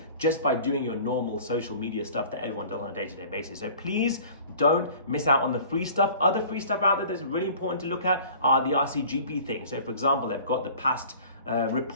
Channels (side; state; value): both; inverted; correlation -0.46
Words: just by doing your normal social media stuff that everyone does on a day-to-day basis. So please don't miss out on the free stuff. Other free stuff out there that's really important to look at are the RCGP things. So for example, they've got the past